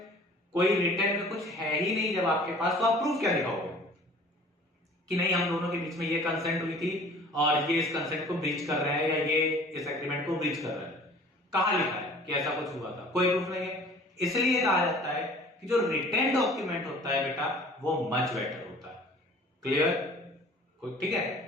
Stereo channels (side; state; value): both; normal; correlation 0.48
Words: कोई रिटर्न में कुछ है ही नहीं जब आपके पास, तो आप प्रूफ क्या दिखाओगे कि नहीं हम दोनों के बीच में ये कंसेंट हुई थी और ये इस कंसेंट को ब्रीच कर रहे हैं या ये इस एग्रीमेंट को ब्रीच कर रहे हैं? कहां लिखा है कि ऐसा कुछ हुआ था? कोई प्रूफ नहीं है। इसलिए कहा जाता है कि जो रिटन डॉक्यूमेंट होता है बेटा वो मच बेटर होता है। क्लियर? ठीक है।